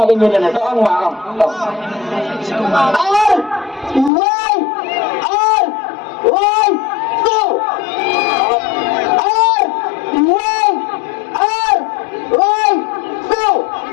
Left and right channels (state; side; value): drops out; right; at 4.1 s